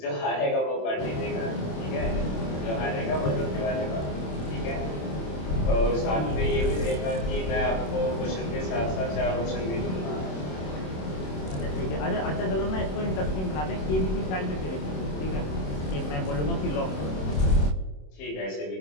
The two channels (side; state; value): right; late; 27 ms